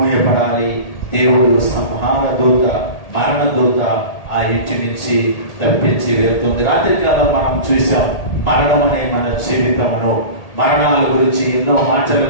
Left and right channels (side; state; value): right; late; 1.8 ms